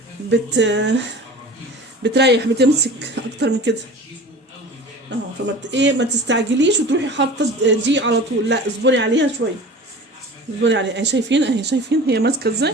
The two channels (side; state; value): both; normal; correlation 0.39